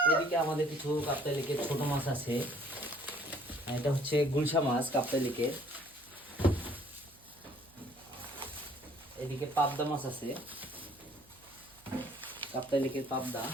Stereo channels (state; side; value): noise; right; hum, 28 dB below the sound